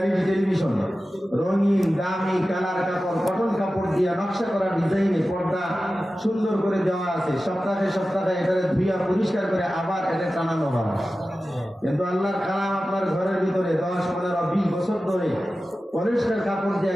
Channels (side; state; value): both; normal; correlation 0.94